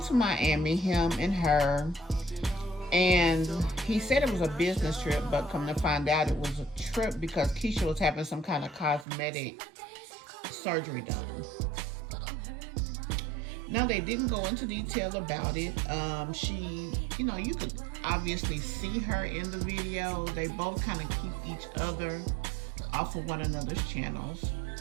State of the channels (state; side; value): drops out; left; at 9.1 s